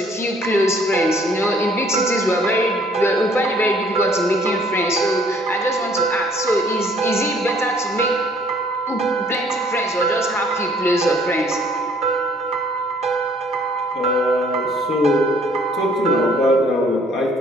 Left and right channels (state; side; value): normal; both; correlation 0.59